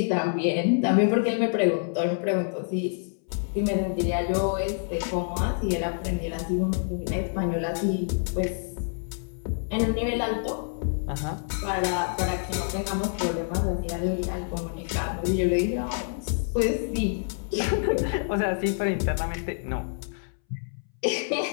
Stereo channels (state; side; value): silent; right; 60 dB below the other